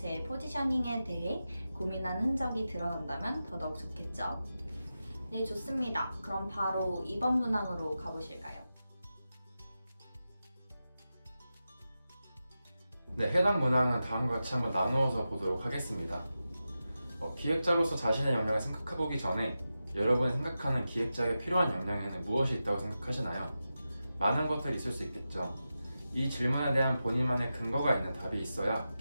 포지셔닝에 대해 고민한 흔적이 드러난다면 더더욱 좋겠죠. 네, 좋습니다. 그럼 바로 2번 문항으로 가보실까요? 네, 해당 문항은 다음과 같이 한번 나누어서 보도록 하겠습니다. 기획자로서 자신의 역량을 생각해보기 전에 여러분이 생각하는 기획자에게 필요한 역량에는 무엇이 있다고 생각하시나요? 많은 것들이 있을 수 있겠죠. 이 질문에 대한 본인만의 근거가 있는 답이 있어야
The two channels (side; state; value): both; inverted; correlation -0.92